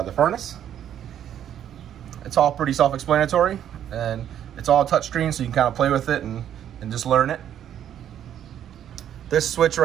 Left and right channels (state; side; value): quieter; left; 10.2 dB